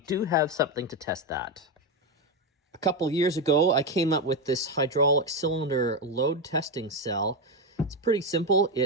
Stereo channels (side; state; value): both; normal; correlation 0.10